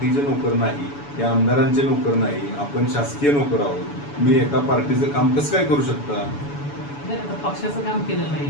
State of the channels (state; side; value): late; right; 7.0 ms